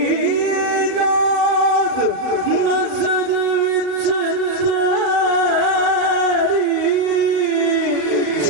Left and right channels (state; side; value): late; left; 38 ms